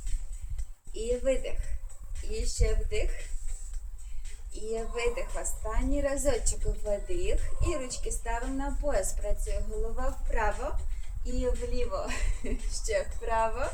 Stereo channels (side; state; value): both; identical; correlation 1.00